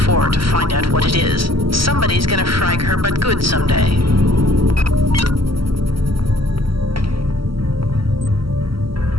to find out what it is. Somebody's gonna frag her but good someday.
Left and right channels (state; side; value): late; left; 0.74 ms